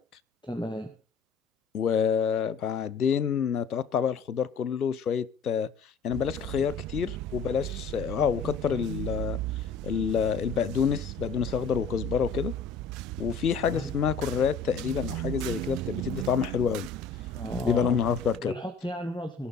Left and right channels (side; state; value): right; quieter; 4.8 dB